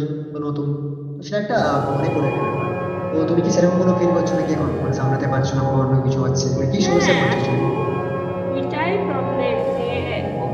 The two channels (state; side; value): identical; both; correlation 1.00